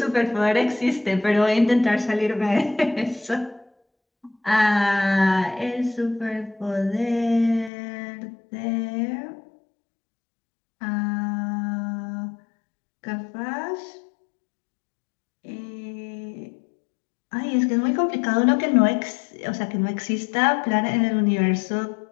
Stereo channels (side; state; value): right; drops out; at 7.7 s